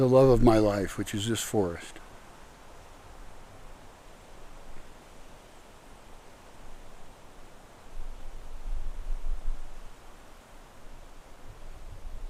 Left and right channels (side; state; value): both; identical; correlation 1.00